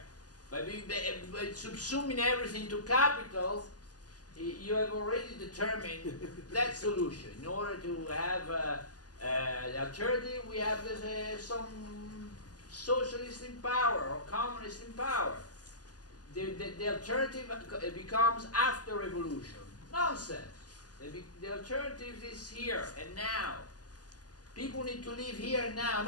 but by subsuming everything to capital, you have already determined that solution. In order to have the alternative, we have some socialist in power or communist in power. The alternative becomes after revolution. Nonsense. The alternative is here and now. People need to live here and now,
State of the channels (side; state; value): right; late; 0.68 ms